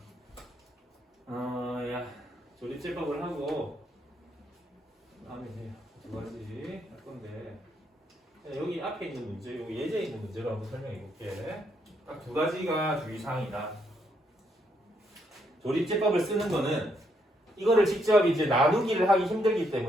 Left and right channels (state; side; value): normal; both; correlation 0.75